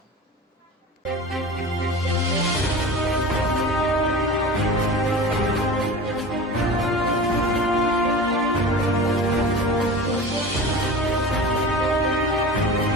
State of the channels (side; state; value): both; normal; correlation 0.34